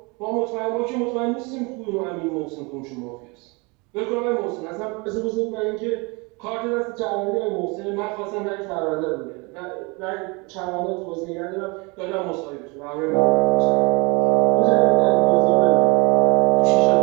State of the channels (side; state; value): left; quieter; 28.5 dB